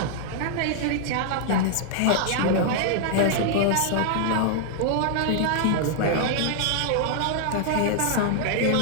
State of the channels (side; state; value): both; different; correlation -0.01